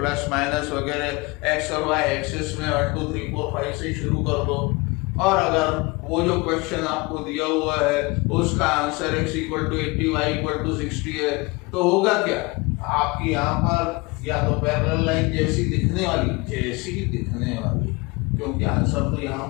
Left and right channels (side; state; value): right; quieter; 25.6 dB